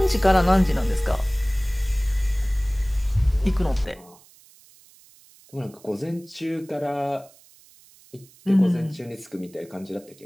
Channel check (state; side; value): noise; right; hiss, 26 dB below the sound